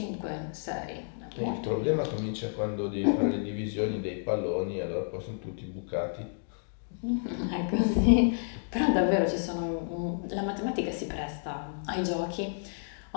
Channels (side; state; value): right; silent; digital silence